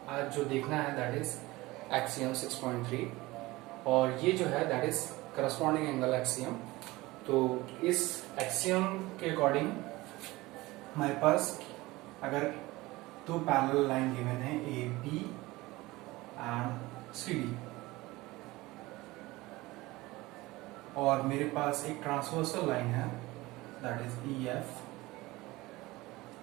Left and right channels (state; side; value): quieter; left; 20.2 dB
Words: आज जो देखना है दैट इज एक्सियम 6.3 और ये जो है that is corresponding angle axiom. तो इस एक्सियम के अकॉर्डिंग हमारे पास अगर दो पैरेलल लाइन गिवन है A B and C D और मेरे पास एक ट्रांसवर्सल लाइन है दैट इज ई एफ।